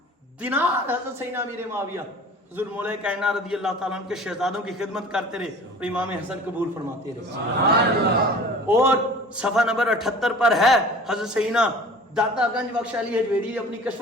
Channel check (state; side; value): normal; both; correlation 0.43